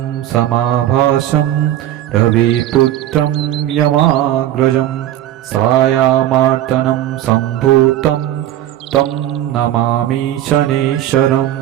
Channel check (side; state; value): left; quieter; 12.8 dB